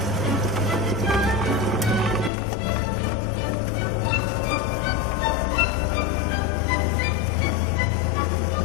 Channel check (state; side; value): drops out; right; at 2.3 s